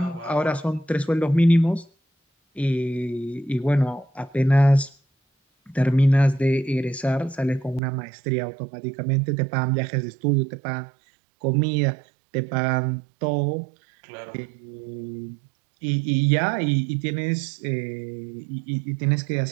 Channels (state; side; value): drops out; left; at 7.8 s